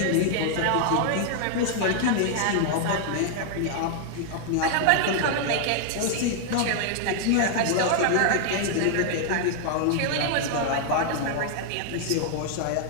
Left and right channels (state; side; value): different; both; correlation 0.00